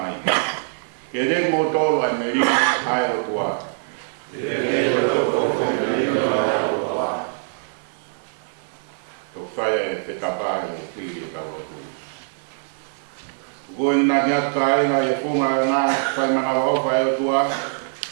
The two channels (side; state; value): left; silent; digital silence